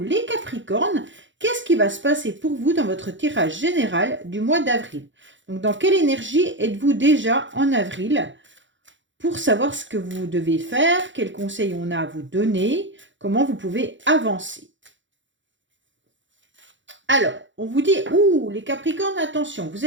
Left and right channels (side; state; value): left; late; 0.54 ms